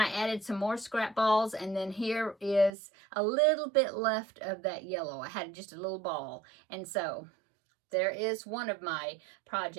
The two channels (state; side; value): drops out; left; at 2.7 s